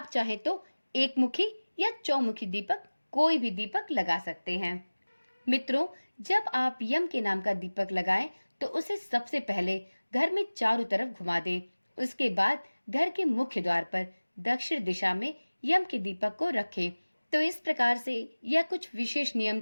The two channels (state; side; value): inverted; both; correlation -1.00